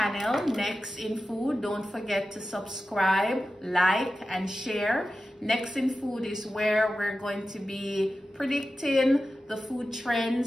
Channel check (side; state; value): both; normal; correlation 0.93